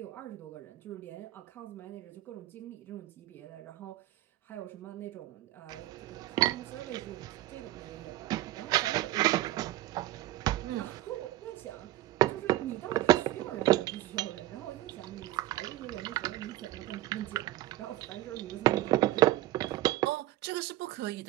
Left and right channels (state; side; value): quieter; left; 15.4 dB